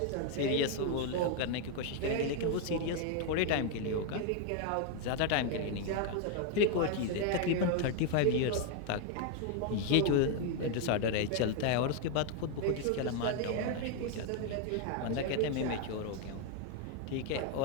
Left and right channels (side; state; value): both; different; correlation 0.01